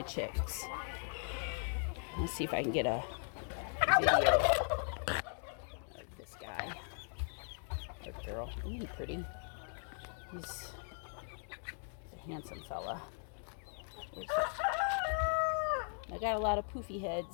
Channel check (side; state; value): right; silent; 52 dB below the other